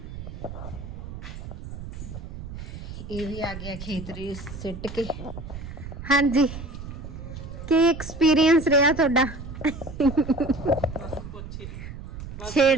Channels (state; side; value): noise; right; rumble, 10 dB below the sound